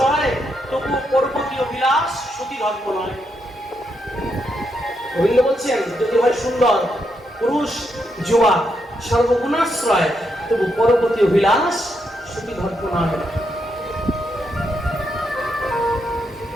তবু পরবর্তীয় বিলাস সতী ধর্ম নয়। গোবিন্দ বলছেন, যদি হয় সুন্দর পুরুষ যুবা সর্বগুণাশ্রয়, তবু পরবর্তীয় বিলাস সতী ধর্ম নয়।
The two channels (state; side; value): normal; both; correlation 0.80